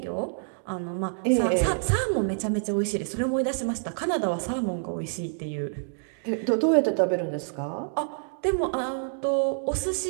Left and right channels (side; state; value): left; silent; digital silence